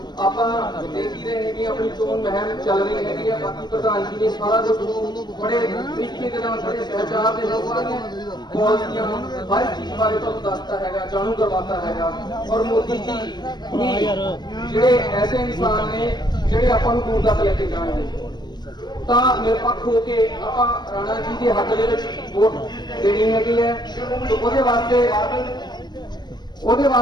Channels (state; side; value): late; right; 0.21 ms